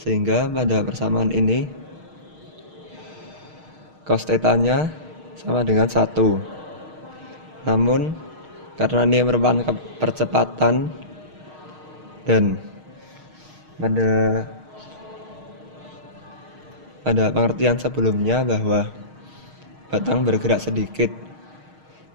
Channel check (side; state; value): left; late; 6.4 ms